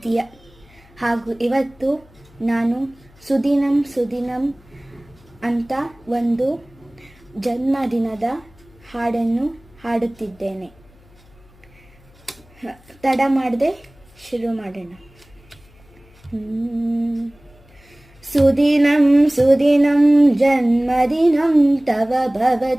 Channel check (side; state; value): left; noise; hum, 27 dB below the sound